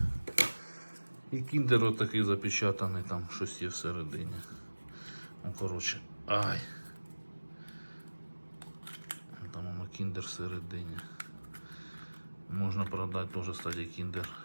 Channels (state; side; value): inverted; both; correlation -1.00